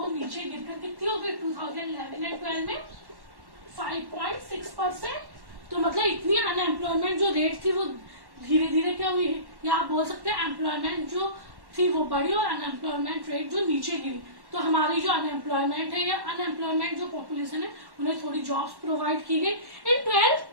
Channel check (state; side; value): late; left; 1.1 ms